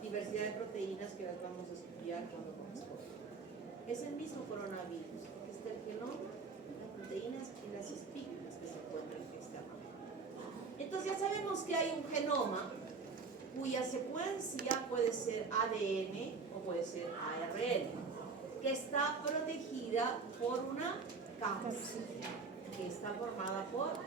diversidad de proteínas que las vamos a estudiar cuando corresponda. Es el mismo coronavirus. Aquí está el genoma, las proteínas y las espículas que se encuentran en esta rama. Entonces ya sabemos que hay un genoma cuya secuencia puede ser ADN o puede ser ARN, que está protegida por una cápside, que está formada por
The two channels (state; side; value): quieter; left; 4.7 dB